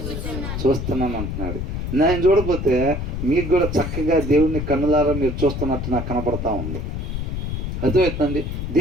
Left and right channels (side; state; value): left; noise; rumble, 4 dB below the sound